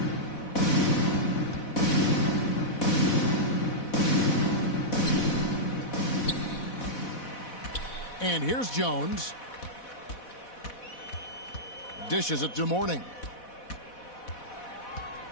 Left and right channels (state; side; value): late; right; 4.1 ms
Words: And here's Jones. Dishes it to Mourning.